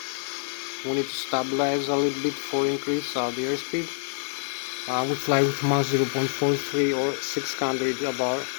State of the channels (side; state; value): right; silent; digital silence